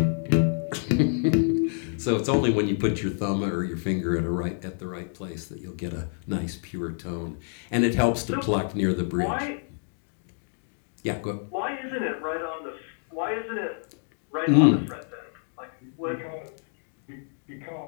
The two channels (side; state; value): right; silent; digital silence